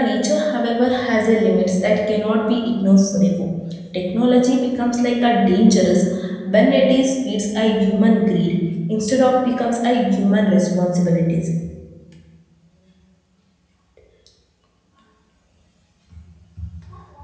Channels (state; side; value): identical; both; correlation 1.00